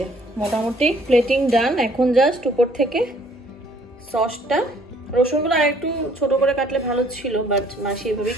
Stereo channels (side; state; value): both; normal; correlation 0.60